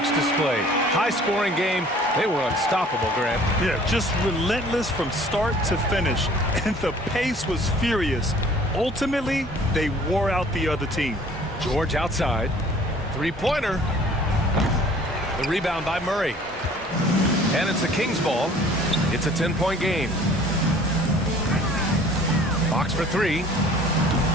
display. High-scoring game. They were unstoppable, Grant. Yeah, just relentless from start to finish. And the pace was furious. ultimately, they wore out the other team. George outside. Three-pointer. The rebound by Murray. And it's the Kings ball. It's a 10-point game. Box for three.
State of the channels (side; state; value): both; normal; correlation 0.52